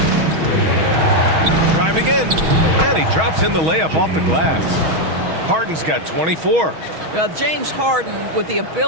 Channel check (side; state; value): left; late; 6.3 ms